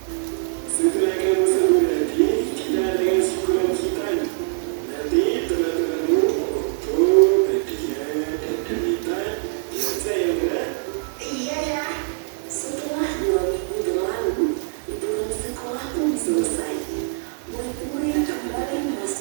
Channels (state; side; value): silent; left; digital silence